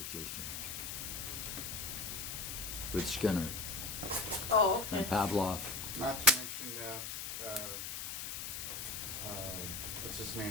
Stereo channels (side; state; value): left; noise; hiss, 5 dB below the sound